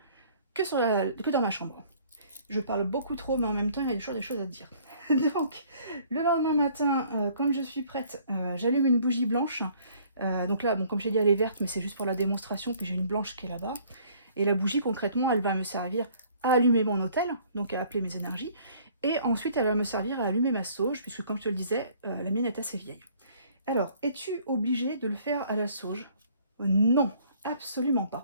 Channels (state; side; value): inverted; both; correlation -0.58